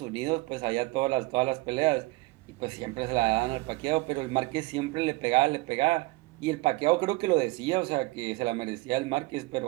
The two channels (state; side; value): quieter; left; 22.6 dB